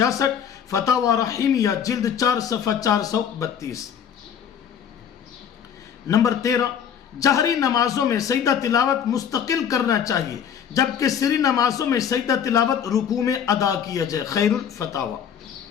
فتاوی رحیمیہ جلد 4 صفحہ 432۔ نمبر 13، جہری نمازوں میں سجدہ تلاوت مستقل کرنا چاہیے، جبکہ سری نمازوں میں سجدہ تلاوت رکوع میں ادا کیا جائے۔ خیر الفتاوی۔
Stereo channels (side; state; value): right; quieter; 8.3 dB